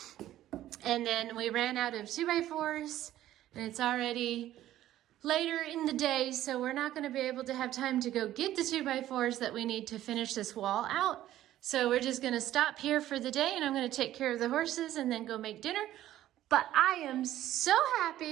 And then we ran out of 2x4s, and it's already later in the day, so we're not gonna be able to have time to go get the 2x4s that we need to finish this wall out. So we're just gonna stop here for the day, and I'm gonna take care of the horses and then go make dinner. But I am so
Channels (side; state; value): left; quieter; 13.4 dB